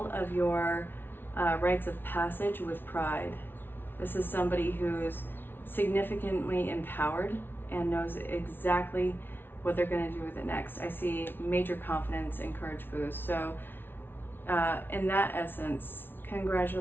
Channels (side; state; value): right; late; 0.10 ms